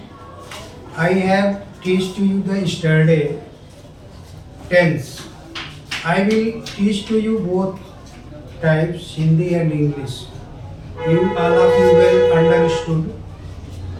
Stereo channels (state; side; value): identical; both; correlation 1.00